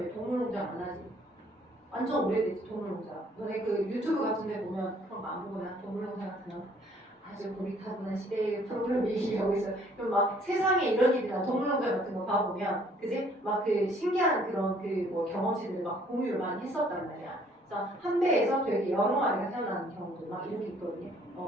동물농장 안 하지? 완전 오래됐지 동물농장. 너네 그 유튜브 같은 데 보면 그런 거 안 보거나 동물농장 같은 거 아주 고리타분한 시대의 프로그램 얘기하고 있어요. 그럼 막 세상에 이런 일이나 동물농장 같은 거 봐보면, 그지? 막 그 신기한 그런 경험치들을 막 공유를 많이 했었단 말이야. 그래서 한 배에서 되게 여러 마리가 태어나는 경우도 막 이렇게 있거든요.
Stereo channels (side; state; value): both; normal; correlation 0.61